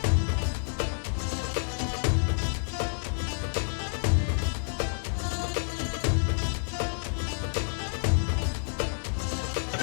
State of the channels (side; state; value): right; silent; 59 dB below the other